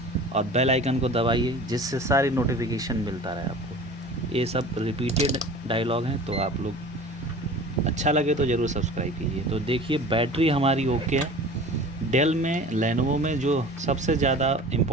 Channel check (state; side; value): normal; both; correlation 0.40